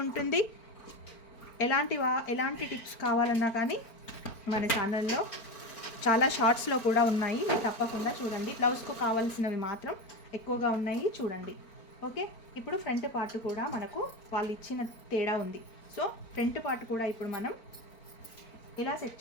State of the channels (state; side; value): late; right; 4.4 ms